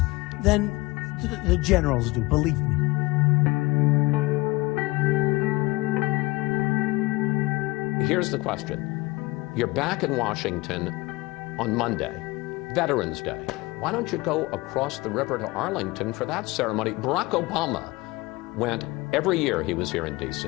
than the generals do, believe me. Here's the question. You're back in Washington on Monday, Veterans Day. Why don't you go across the river to Arlington for that ceremony? Barack Obama went every year he was here in D.C.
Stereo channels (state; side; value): quieter; right; 22.2 dB